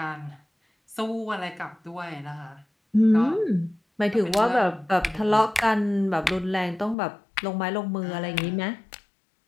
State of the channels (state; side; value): drops out; right; at 7.0 s